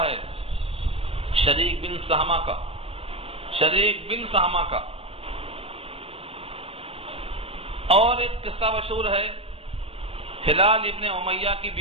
ہے شریک بن سہمہ کا. شریک بن سہمہ کا. اور ایک قصہ مشہور ہے ہلال ابن امیہ کی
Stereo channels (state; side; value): late; left; 0.28 ms